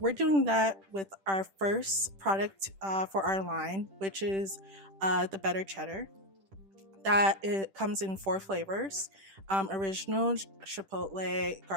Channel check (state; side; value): late; left; 10 ms